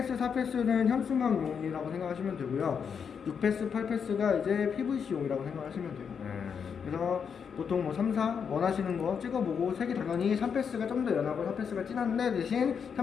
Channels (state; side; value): quieter; right; 6.8 dB